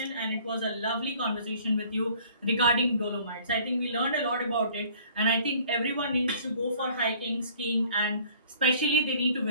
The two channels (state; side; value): inverted; both; correlation -0.54